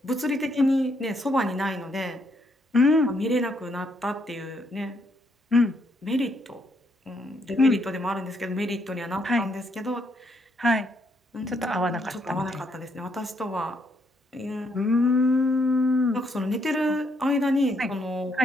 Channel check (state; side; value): normal; both; correlation 0.74